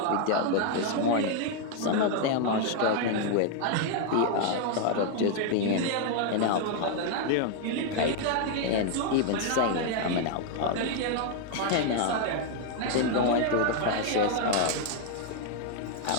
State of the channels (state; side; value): different; both; correlation 0.00